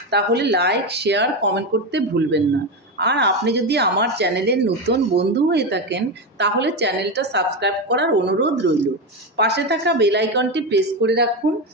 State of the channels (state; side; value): normal; both; correlation 0.14